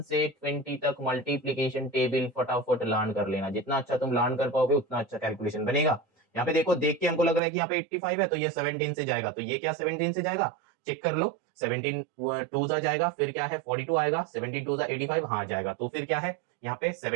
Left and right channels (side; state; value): left; drops out; at 7.4 s